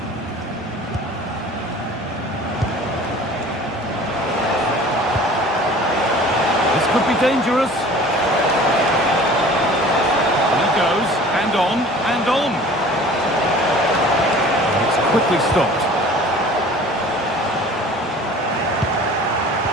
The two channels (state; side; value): normal; both; correlation 0.45